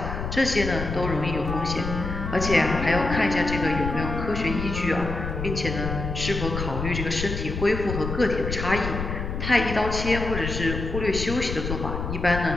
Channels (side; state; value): left; noise; rumble, 5 dB below the sound